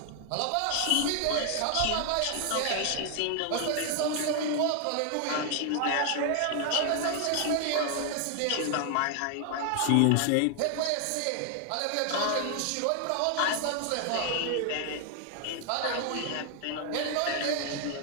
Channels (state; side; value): different; both; correlation 0.00